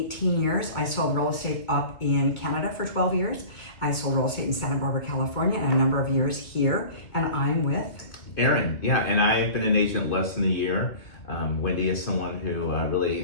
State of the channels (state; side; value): late; right; 2.2 ms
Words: years. I sold real estate up in Canada for 12 years. I sold real estate in Santa Barbara, California, and a number of years here. And I'm with Aaron. Yeah, and I've been an agent less than a year. Wendy is someone who